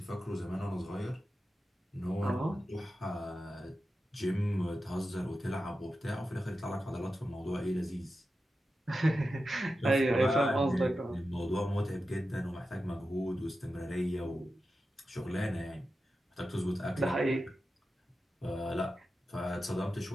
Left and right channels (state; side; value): normal; both; correlation 0.91